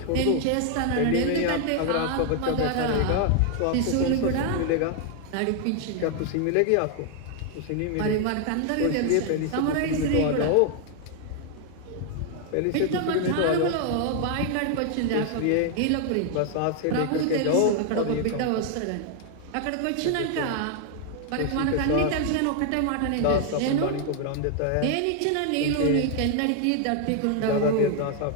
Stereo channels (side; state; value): both; different; correlation 0.00